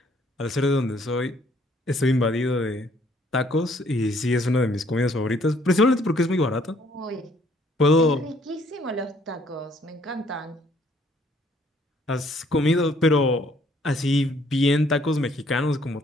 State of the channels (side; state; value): both; normal; correlation 0.64